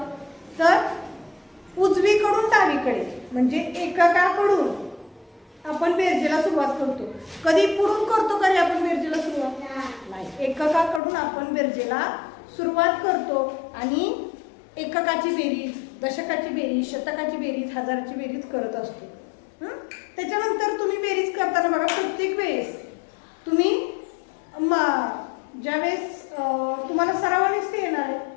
तर उजवीकडून डावीकडे म्हणजे एककाकडून आपण बेरजेला सुरुवात करतो. कधी पुढून करतो का रे आपण बेरजेला सुरुवात? नाही, एककाकडून आपण बेरजेला सुरुवात करतो आणि एककाची बेरीज, दशकाची बेरीज, शतकाची बेरीज, हजाराची बेरीज करत असतो. त्याच्यानंतर तुम्ही बेरीज करताना बघा, प्रत्येक वेळेस तुम्ही ज्यावेळेस तुम्हाला सरावानेच ते येणार आहे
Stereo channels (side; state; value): right; drops out; at 11.0 s